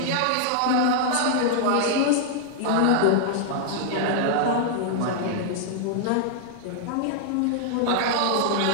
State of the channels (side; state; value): both; different; correlation -0.01